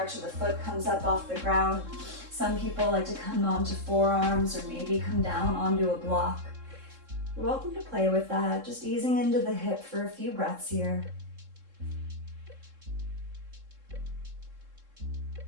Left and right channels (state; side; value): late; left; 3.7 ms